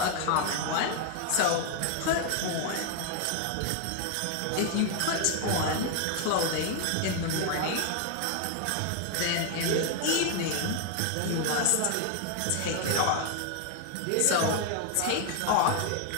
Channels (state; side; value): different; both; correlation 0.00